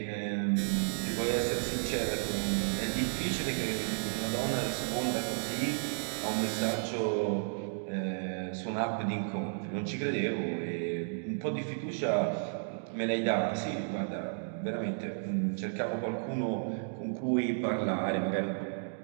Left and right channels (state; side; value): silent; left; digital silence